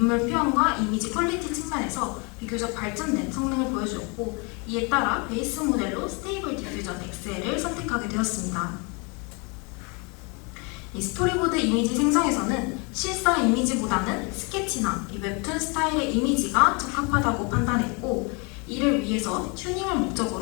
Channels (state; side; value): quieter; right; 31.5 dB